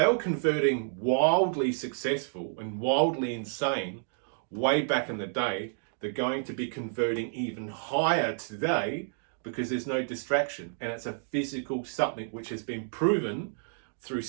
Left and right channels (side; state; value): left; silent; digital silence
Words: were converting wildly successful and wildly insane way back in the day, they're going to be converting even higher today because there's no distraction, and it's a physical something which has been proven through